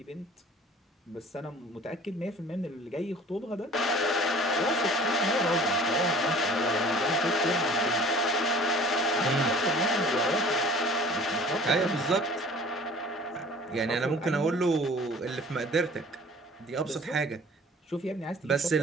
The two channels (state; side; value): normal; both; correlation 0.48